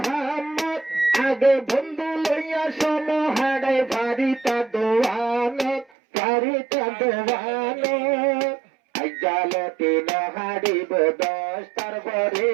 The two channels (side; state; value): left; drops out; at 5.9 s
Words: আগে বন্ধু লইয়া সমহাড়ে বাড়িটা দোয়ানত বাড়িটা দোয়ানো জালতি নহাড়িব 10টার পরে